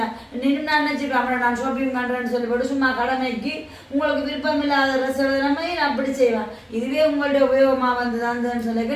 நின்று நான் நினைச்சுக்கலாம். நான் ஷாப்பிங் பண்றேன்னு சொல்லி போட்டு சும்மா கடமைக்கு உங்களுக்கு விருப்பம் இல்லாத ட்ரெஸ் எழுதுனமே நான் அப்படி செய்வேன். இதுவே உங்களுடைய உபயோகமா வந்ததுன்னு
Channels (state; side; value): identical; both; correlation 1.00